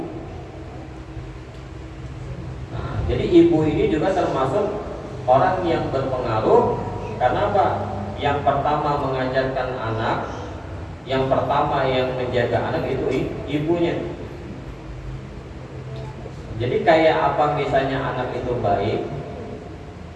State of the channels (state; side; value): identical; both; correlation 1.00